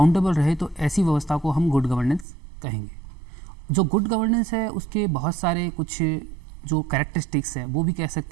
रहे, तो ऐसी व्यवस्था को हम गुड गवर्नेंस कहेंगे। जो गुड गवर्नेंस है उसके बहुत सारे कुछ जो कैरेक्टरिस्टिक्स है, वो भी कह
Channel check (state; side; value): drops out; left; at 2.2 s